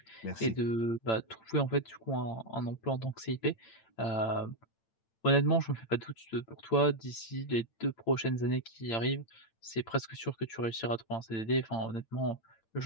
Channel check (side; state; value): right; late; 8.9 ms